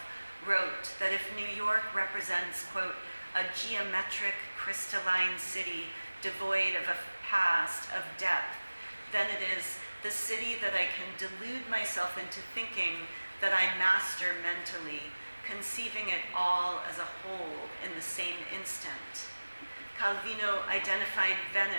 wrote that if New York represents, quote, a geometric crystalline city devoid of a past, of depth, then it is the city that I can delude myself into thinking that I master mentally, conceiving it all as a whole in the same instant. Calvino identified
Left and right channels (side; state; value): both; inverted; correlation -1.00